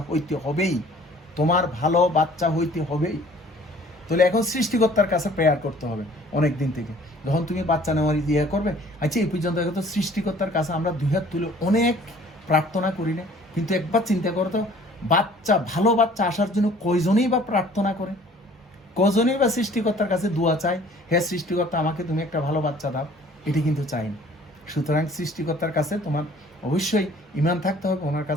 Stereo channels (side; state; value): both; normal; correlation 0.53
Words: হইতে হবেই, তোমার ভালো বাচ্চা হইতে হবেই। তাহলে এখন সৃষ্টিকর্তার কাছে প্রেয়ার করতে হবে অনেক দিন থেকে, যখন তুমি বাচ্চা নেওয়ার ইয়ে করবে। আচ্ছা, এই পর্যন্ত তো সৃষ্টিকর্তার কাছে আমরা দুই হাত তুলে অনেক প্রার্থনা করি না, কিন্তু একবার চিন্তা করো তো, বাচ্চা, ভালো বাচ্চা আসার জন্য কয়জনেই বা প্রার্থনা করে, কজনেই বা সৃষ্টিকর্তার কাছে দোয়া চায়, হে সৃষ্টিকর্তা আমাকে তুমি একটা ভালো বাচ্চা দাও, এটি কিন্তু চাই না। সুতরাং সৃষ্টিকর্তার কাছে তোমার অবশ্যই ঈমান থাকতে হবে, ওনার